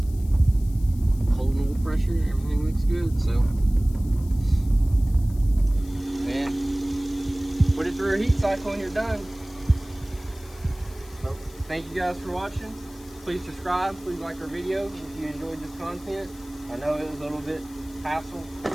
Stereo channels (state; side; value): noise; left; hiss, 22 dB below the sound